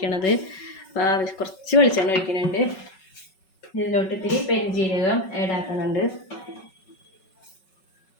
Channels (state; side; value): late; right; 5.3 ms